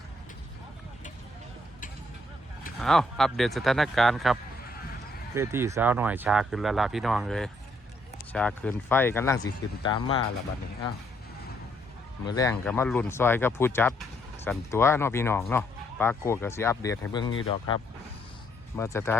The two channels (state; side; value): normal; both; correlation 0.70